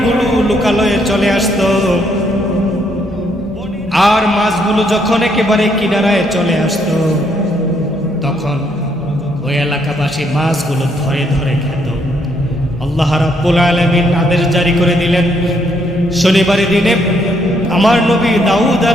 লোকালয়ে চলে আসত। আর মাছগুলো যখন একেবারে কিনারায় চলে আসত, তখন ওই এলাকাবাসী মাছগুলো ধরে ধরে খেত। আল্লাহ রাব্বুল আলামিন আদেশ জারি করে দিলেন, শনিবারের দিনে আমার নবী দাউদ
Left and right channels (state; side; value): normal; both; correlation 0.72